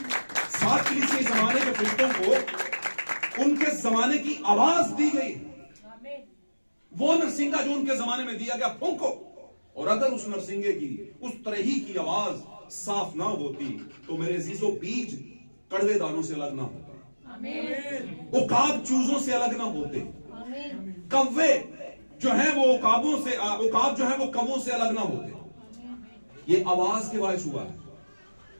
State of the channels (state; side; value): inverted; both; correlation -1.00